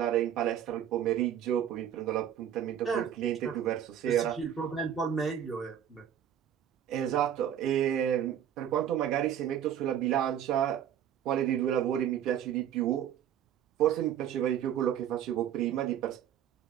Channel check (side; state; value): left; quieter; 9.9 dB